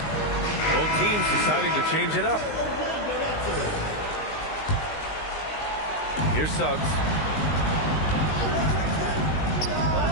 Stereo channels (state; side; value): late; right; 19 ms